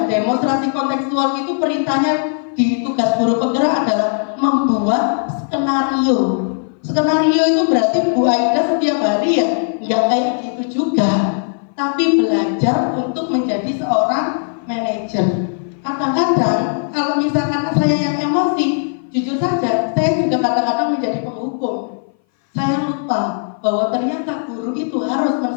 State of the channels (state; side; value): silent; right; 58 dB below the other